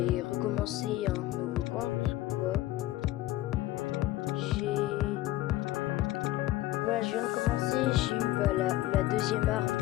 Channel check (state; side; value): quieter; right; 16.2 dB